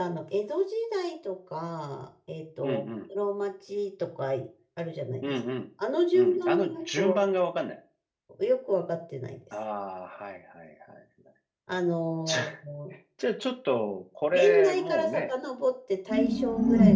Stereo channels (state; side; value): identical; both; correlation 1.00